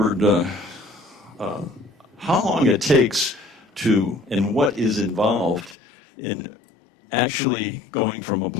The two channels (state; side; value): drops out; right; at 5.8 s